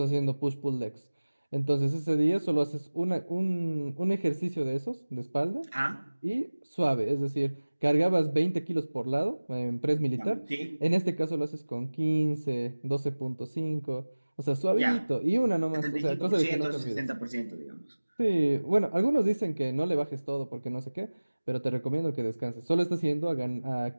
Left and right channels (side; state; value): both; inverted; correlation -1.00